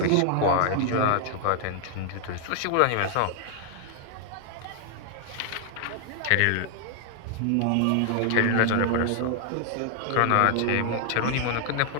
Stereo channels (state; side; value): different; both; correlation 0.00